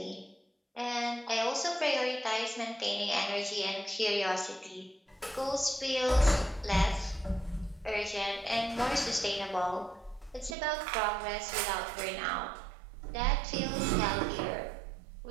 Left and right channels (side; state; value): left; drops out; at 10.6 s